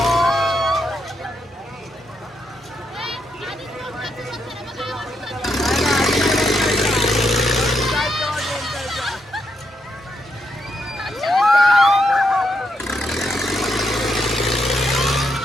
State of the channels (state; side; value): normal; both; correlation 0.80